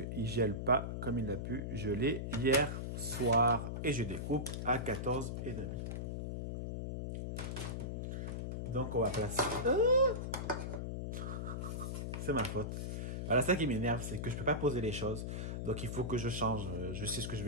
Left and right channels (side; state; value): left; noise; hum, 3 dB below the sound